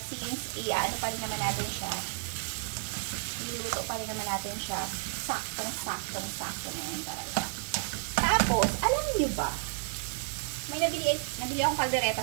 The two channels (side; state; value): left; silent; digital silence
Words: since, ano pa rin naman natin siya. Iluluto pa rin naman natin siya. Saktong-sakto na yan talaga. Tapos, alam niyo ba? May nabili akong